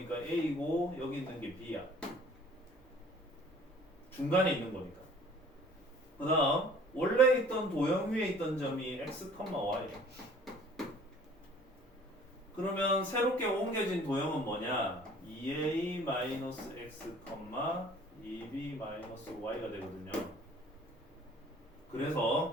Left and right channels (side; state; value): both; normal; correlation 0.52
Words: A고 여기 있는 게 B야. 중간에 있는 거니까. 그 다음 원래 있던 도형 위에 있던 점이 x, y. 그러면 새롭게 옮겨진 도형은 뭐냐? 2a-x, 2b-y가 되거든요.